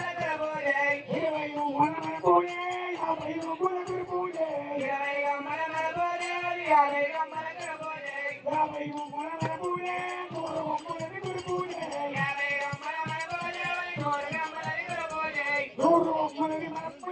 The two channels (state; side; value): identical; both; correlation 1.00